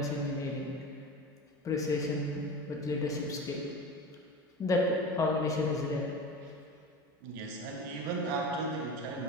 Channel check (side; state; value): both; normal; correlation 0.30